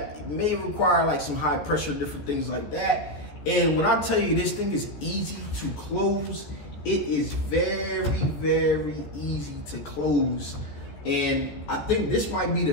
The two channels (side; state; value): right; late; 14 ms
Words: may require like some high pressure, different things like that. And when I tell you this thing is easy to close, it is very, very easy to close. And I think this might be